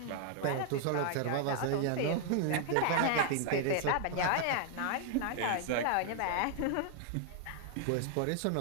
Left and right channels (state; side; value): different; both; correlation 0.00